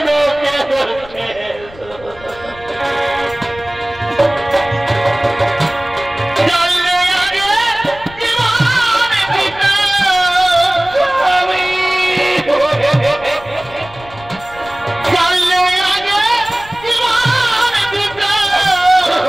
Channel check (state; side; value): noise; left; rumble, 20 dB below the sound